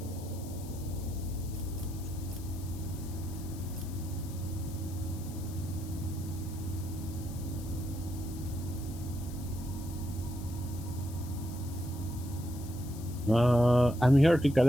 I'm here to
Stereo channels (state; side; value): noise; left; hiss, 17 dB below the sound